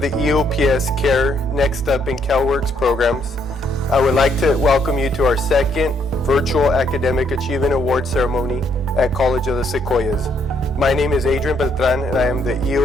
EOPS CARE Next Up and CalWORKS programs, I would like to welcome you to our second virtual Academic Achievement Award ceremony at College of the Sequoias. My name is Adrian Beltran, and I am the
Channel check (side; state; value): both; normal; correlation 0.71